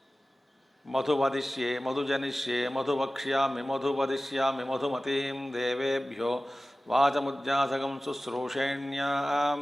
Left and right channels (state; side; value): normal; both; correlation 0.96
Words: मधुवदिष्ये मधुजनिष्ये मधुवक्ष्यामि मधुवदिष्यामि मधुमतीं देवेभ्यो वाचमुज्जासकं शुश्रूषेण्यां